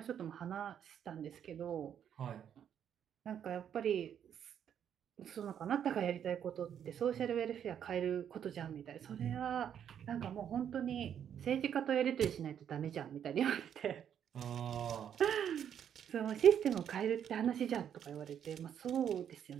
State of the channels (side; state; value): left; quieter; 9.0 dB